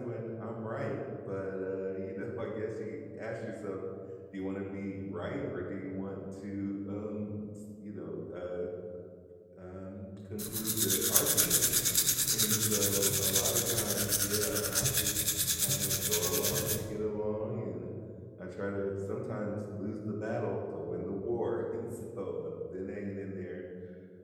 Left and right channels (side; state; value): both; identical; correlation 1.00